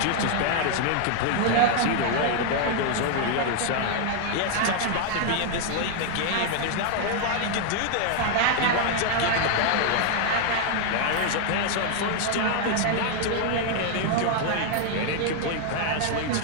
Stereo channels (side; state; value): both; different; correlation 0.00